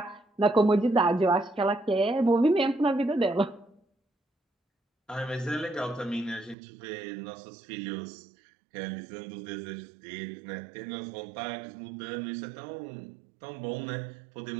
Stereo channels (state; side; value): drops out; left; at 6.6 s